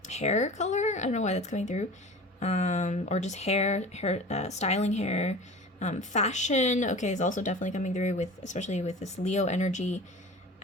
hair color. I don't know why that's coming through. Or just hair, styling hair. Fashion, okay, is also definitely coming through with, especially with this Leo energy.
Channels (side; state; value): both; normal; correlation 0.37